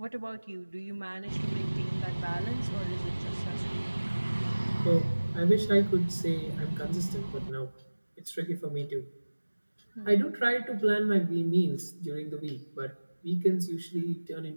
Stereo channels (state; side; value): inverted; both; correlation -1.00